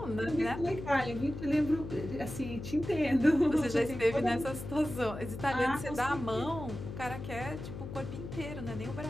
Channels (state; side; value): noise; left; hum, 9 dB below the sound